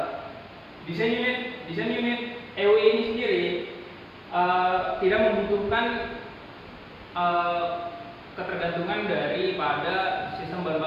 Desain unit EUI ini sendiri tidak membutuhkan ketergantungan daripada sistem bahan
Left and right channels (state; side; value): identical; both; correlation 1.00